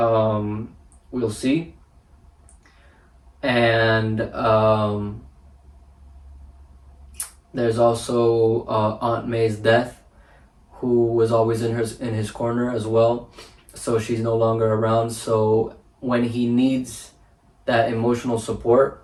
see. And there's also Aunt May's death, who was always in his corner as well. So she's no longer around. So when he needs that emotional support,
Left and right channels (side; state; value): both; identical; correlation 1.00